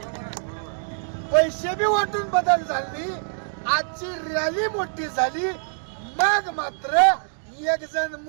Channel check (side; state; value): left; silent; digital silence